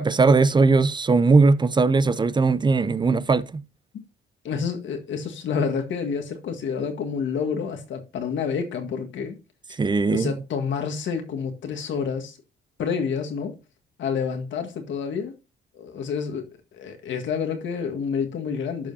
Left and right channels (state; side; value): normal; both; correlation 0.69